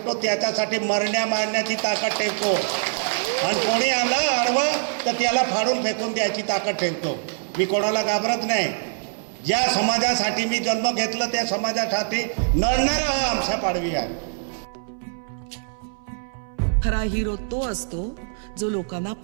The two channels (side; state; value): left; silent; 60 dB below the other